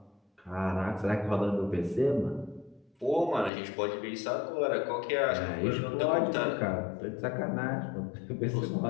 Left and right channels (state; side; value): drops out; right; at 3.5 s